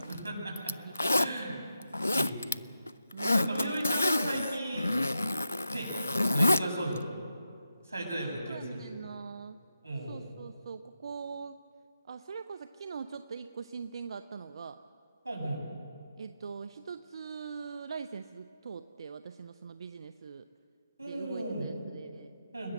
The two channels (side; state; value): both; inverted; correlation -0.87